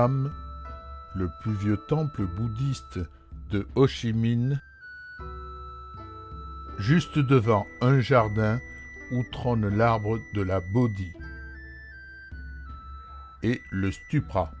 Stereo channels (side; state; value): both; identical; correlation 1.00